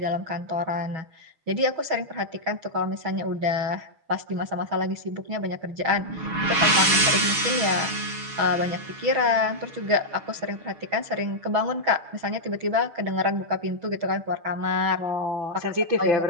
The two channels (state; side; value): late; left; 6.6 ms